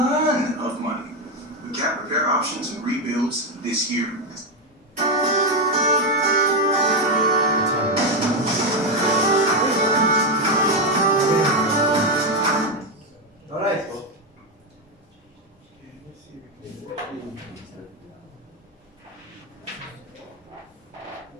of money with cat repair options and rebuilds this year. Alright.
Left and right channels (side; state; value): both; normal; correlation 0.07